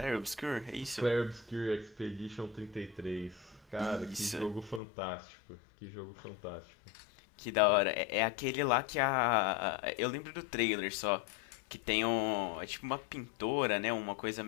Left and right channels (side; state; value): right; drops out; at 4.8 s